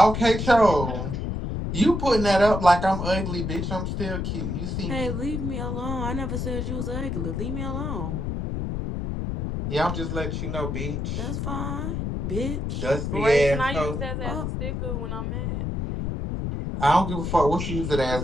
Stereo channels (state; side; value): noise; left; rumble, 3 dB below the sound